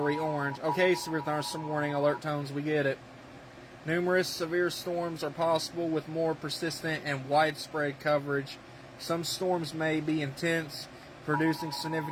orange. Okay, severe thunderstorm warning, alert tones, we get it. Numerous severe storms are possible with more persistent and widespread coverage. Some storms may be intense, producing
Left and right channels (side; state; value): both; identical; correlation 1.00